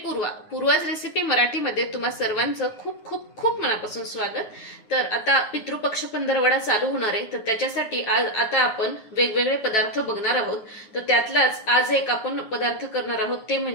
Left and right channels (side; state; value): right; late; 9.6 ms